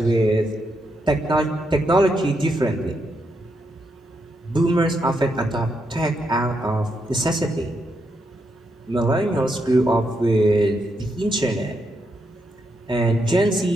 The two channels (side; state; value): both; normal; correlation 0.81